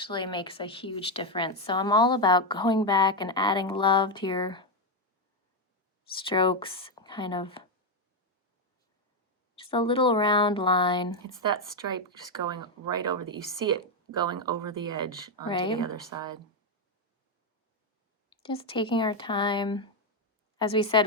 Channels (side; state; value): both; normal; correlation 0.06